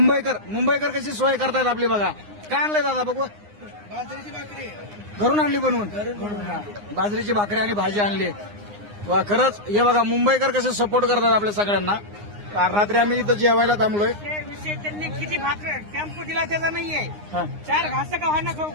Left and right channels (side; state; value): left; late; 9.7 ms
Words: कशी सोय करतायत आपली बघा. काय आणलंय दादा बघू. बाजरीची भाकरी घरून आणली बनवून. बाजरीची भाकरी आणि भाजी आणली. वा खरंच हे बघा मुंबईकर कसे सपोर्ट करतात आपल्या सगळ्यांना. रात्री आम्ही इथं जेवायला थांबलोय. विषय त्यांनी किती भाकर टेम्पो दिला त्याचा नाहीये. हा. 4 घास का खाणं खाऊ